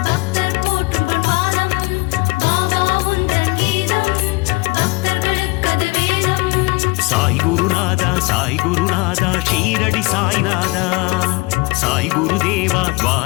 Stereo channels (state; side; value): quieter; right; 25.1 dB